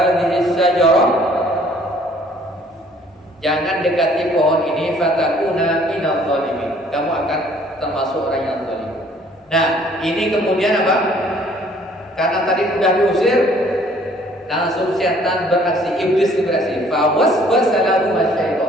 syajarah, jangan dekati pohon ini. Fatakuna minadh dhalimin, kamu akan termasuk orang yang zalim. Nah, ini kemudian apa? Karena tadi sudah diusir, langsung setan beraksi, iblis beraksi. Fawaswasa lahum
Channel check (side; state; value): both; normal; correlation 0.58